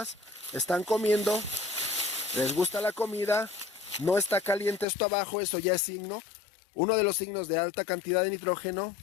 están comiendo, les gusta la comida, no está caliente esto abajo, eso ya es signo. Uno de los signos de alta cantidad de nitrógeno,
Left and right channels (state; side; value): drops out; right; at 4.9 s